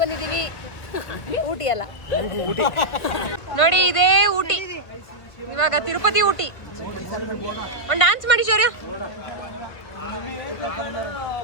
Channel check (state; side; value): late; right; 1.6 ms